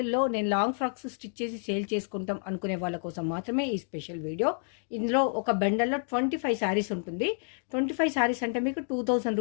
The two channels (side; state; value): right; silent; 58 dB below the other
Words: నేను లాంగ్ ఫ్రాక్స్ స్టిచ్ చేసి సేల్ చేసుకుంటాం అనుకునే వాళ్ళ కోసం మాత్రమే ఈ స్పెషల్ వీడియో. ఇందులో ఒక బండల్లో 25 శారీస్ ఉంటుంది. 25 శారీస్ అంటే మీకు 2000